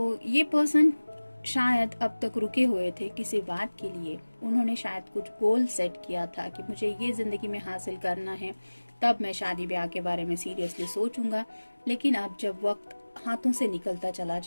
ये पर्सन शायद अब तक रुके हुए थे किसी बात के लिए, उन्होंने शायद कुछ गोल सेट किया था कि मुझे ये जिंदगी में हासिल करना है, तब मैं शादी ब्याह के बारे में सीरियसली सोचूंगा। लेकिन अब जब वक्त हाथों से निकलता चला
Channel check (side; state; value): both; inverted; correlation -1.00